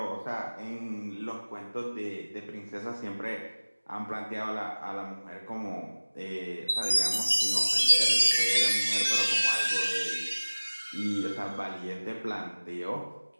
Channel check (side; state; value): both; inverted; correlation -1.00